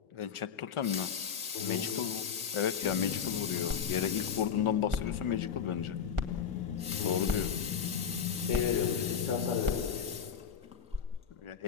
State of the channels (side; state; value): right; quieter; 7.5 dB